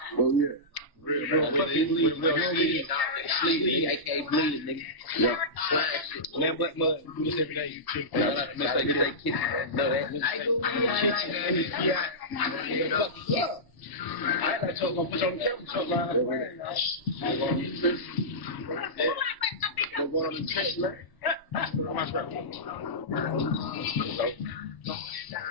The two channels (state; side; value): late; right; 1.0 ms